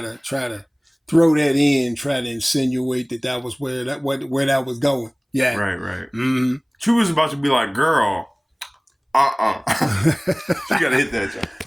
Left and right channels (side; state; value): both; identical; correlation 1.00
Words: to throw that in, try to insinuate that was where that was going. Yeah, right. Mm-hmm. She was about to be like, "Girl, she gotta hit that jump."